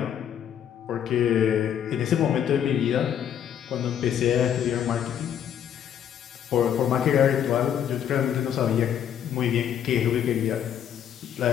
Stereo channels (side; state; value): right; quieter; 9.4 dB